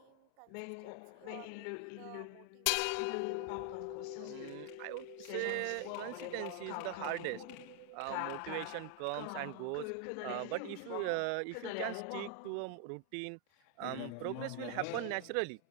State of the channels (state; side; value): different; both; correlation 0.00